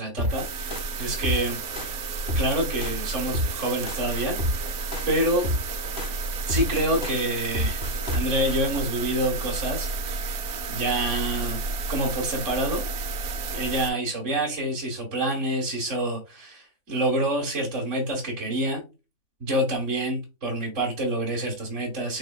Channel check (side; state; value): left; late; 3.4 ms